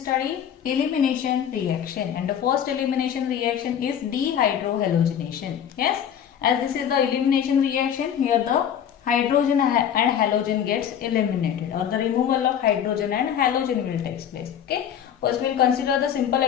elimination reaction and the first elimination reaction is dehydrohalogenation. Yes, as this is the elimination reaction, here the hydrogen and halogen gets eliminated or the removal of hydrogen and halogen will take place. Okay, first we will consider the simple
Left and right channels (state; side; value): quieter; right; 9.1 dB